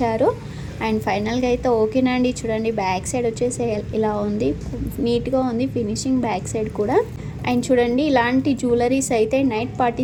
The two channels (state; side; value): identical; both; correlation 1.00